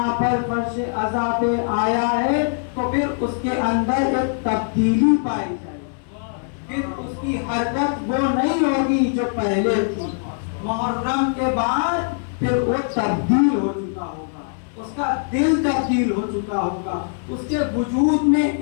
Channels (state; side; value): silent; right; digital silence